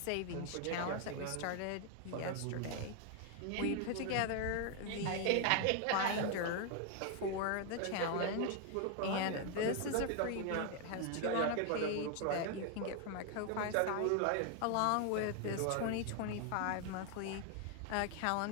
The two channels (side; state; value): both; different; correlation 0.00